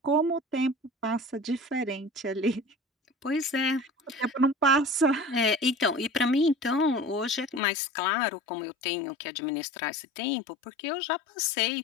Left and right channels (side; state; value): right; drops out; at 7.6 s